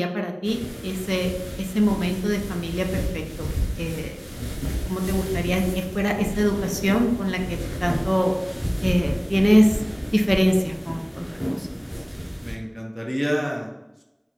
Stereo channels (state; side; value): identical; both; correlation 1.00